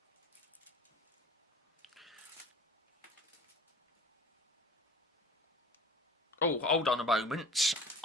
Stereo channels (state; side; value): normal; both; correlation 0.43